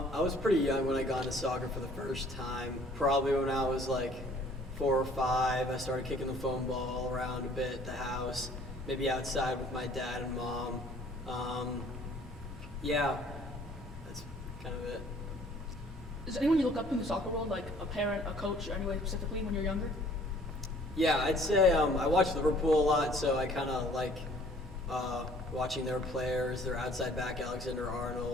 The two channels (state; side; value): normal; both; correlation 0.56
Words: was pretty young when I got into soccer for the first time. Probably when I was like 4 or 5. I started kicking the foam ball around a bit at the house, maybe outside with my dad and mom. Yeah, that's kind of it. Is there anyone you look up to in the soccer world, like a parent, a coach, or anyway specifically when you're younger? Yeah, I'd say I watch Liverpool a lot, so I kind of like watching their players. Their outside back, Alexander